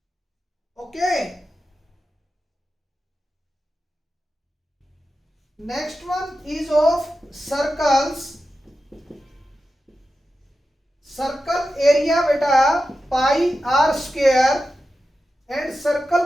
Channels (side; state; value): both; normal; correlation 0.91